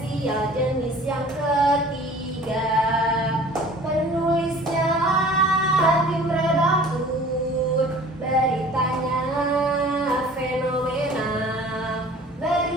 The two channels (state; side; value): normal; both; correlation 0.47